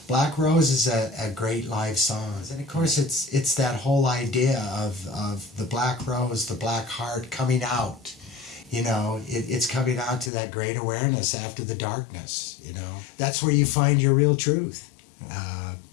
Black Rose is a great live song, and of course it's that whole idea of the black rose, the black heart coming out. It's coming out to that great awareness after the darkness. That's where you find your real truth,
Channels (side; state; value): right; drops out; at 10.3 s